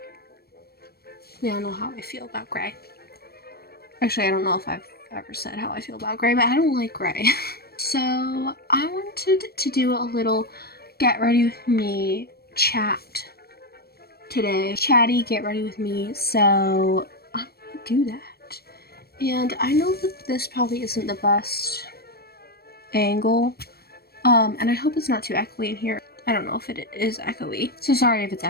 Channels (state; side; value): late; right; 0.45 ms